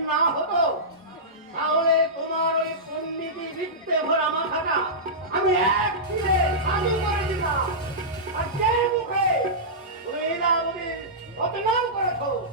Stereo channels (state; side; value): normal; both; correlation -0.15